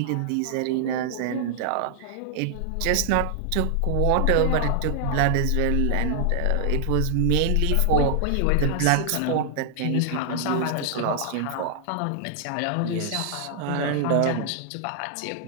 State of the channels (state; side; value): different; both; correlation 0.00